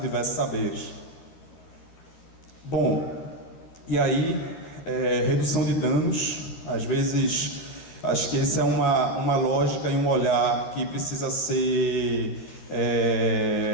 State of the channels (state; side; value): late; right; 12 ms